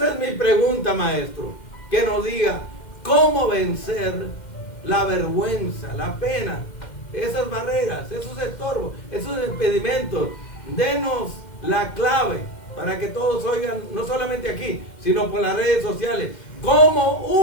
es mi pregunta, maestro. Que nos diga cómo vencer la vergüenza, la pena, esas barreras, esos estorbos, esos impedimentos. Denos la clave para que todos oigan, no solamente aquí, sino por las redes sociales, cómo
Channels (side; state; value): right; late; 2.1 ms